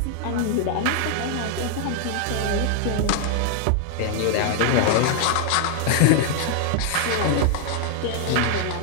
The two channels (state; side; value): different; both; correlation 0.00